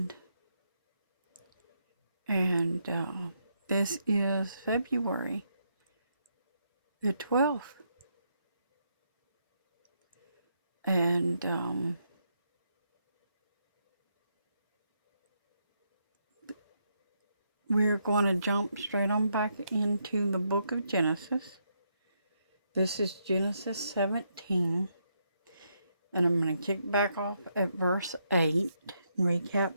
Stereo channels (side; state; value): both; inverted; correlation -0.78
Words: And this is February the 12th. And we're going to jump straight on back into the book of Genesis. This is Genesis 17. And I'm going to kick back off at verse 8, recap